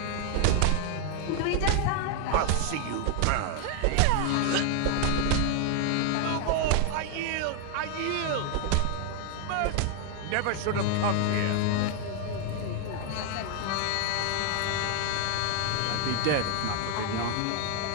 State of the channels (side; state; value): both; different; correlation 0.00